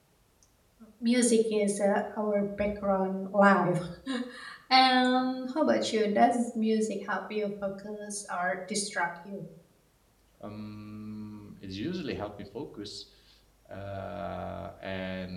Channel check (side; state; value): both; identical; correlation 1.00